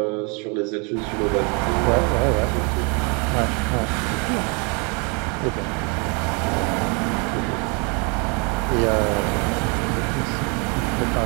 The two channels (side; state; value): left; quieter; 33.2 dB